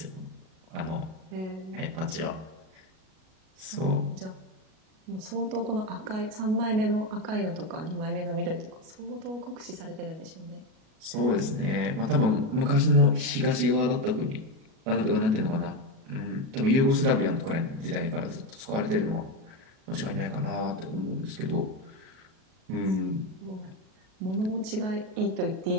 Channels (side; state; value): left; late; 37 ms